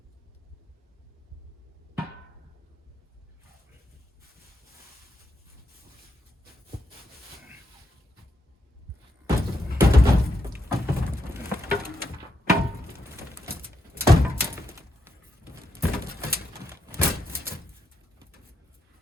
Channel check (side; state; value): both; normal; correlation 0.81